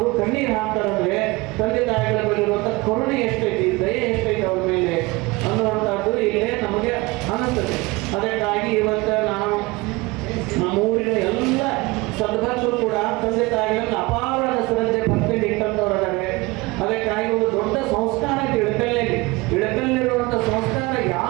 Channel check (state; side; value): quieter; left; 23.0 dB